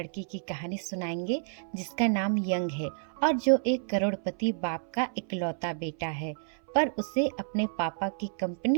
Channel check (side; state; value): left; silent; 58 dB below the other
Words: की कहानी सुनाएंगे जिसका नाम यंग है और जो एक करोड़पति बाप का इकलौता बेटा है। पर उसे अपने पापा की